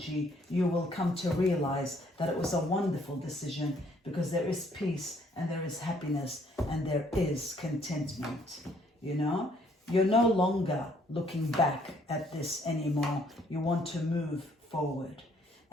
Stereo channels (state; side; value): normal; both; correlation 0.65